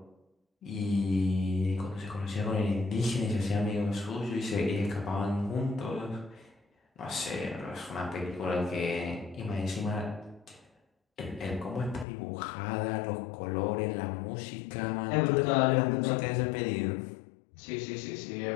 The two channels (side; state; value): right; drops out; at 12.1 s